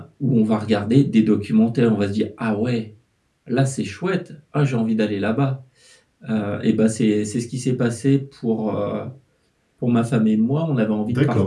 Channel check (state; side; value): identical; both; correlation 1.00